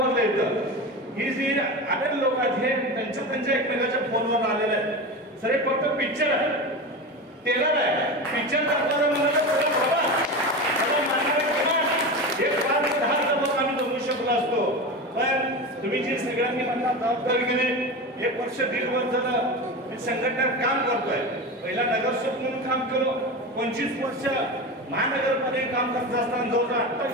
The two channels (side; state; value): both; normal; correlation 0.25